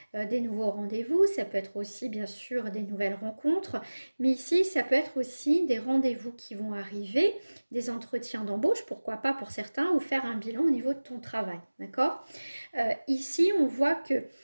Des nouveaux rendez-vous, ça peut être aussi bien sûr des nouvelles rencontres, mais ici ça peut être aussi des rendez-vous qui vont arriver, des entretiens d'embauche, pourquoi pas pour certains, ou faire un bilan au niveau de ton travail, d'accord? Ici, on voit que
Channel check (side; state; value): both; inverted; correlation -1.00